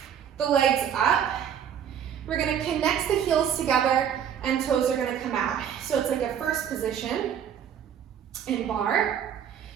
the legs up. We're gonna connect the heels together and toes are gonna come out. So it's like a first position in bar.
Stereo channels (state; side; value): quieter; left; 8.8 dB